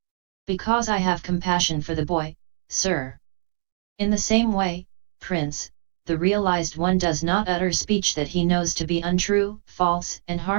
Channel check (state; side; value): silent; left; digital silence